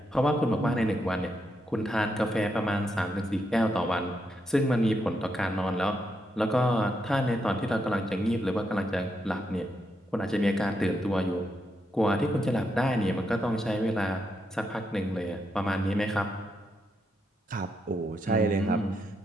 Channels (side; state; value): both; normal; correlation 0.81